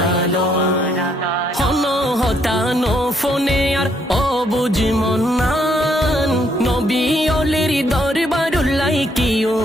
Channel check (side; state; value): both; normal; correlation 0.71